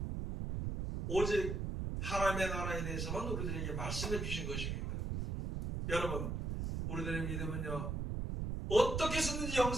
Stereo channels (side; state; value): right; noise; rumble, 2 dB below the sound